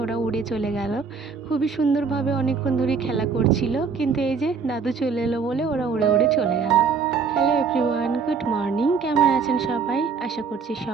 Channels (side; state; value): left; quieter; 5.5 dB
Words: ওরা উড়ে চলে গেল। খুবই সুন্দরভাবে অনেকক্ষণ ধরে খেলা করছিল, কিন্তু এই যে দাদু চলে এলো বলে ওরা উড়ে উড়ে চলে গেল। Hello everyone, good morning. কেমন আছেন সবাই? আশা করছি